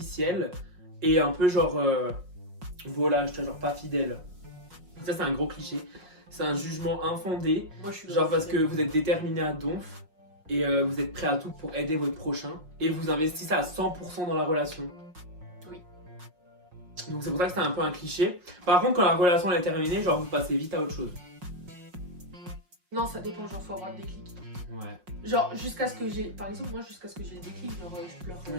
et un peu genre. Voilà, je te genre pas fidèle. Ça, c'est un gros cliché. C'est un jugement infondé. Moi, je suis genre parce que vous êtes déterminé à donf et vous êtes prêt à tout pour aider votre prochain et vous investissez à 100% dans la relation. Oui. Donc c'est pour ça que c'est un peu un cliché. Par contre, quand la relation elle est terminée, genre vous passez vite à autre chose. Non, ça dépend, genre faut avoir le déclic. Ouais. Genre jusqu'à ce que j'ai, par exemple moi jusqu'à ce que j'ai le déclic, genre je pleure.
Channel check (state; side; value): late; left; 5.5 ms